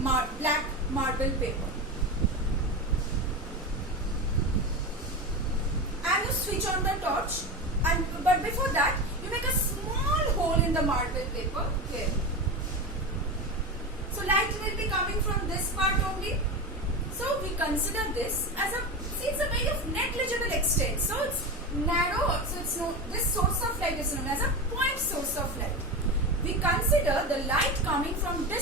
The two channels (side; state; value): both; normal; correlation 0.22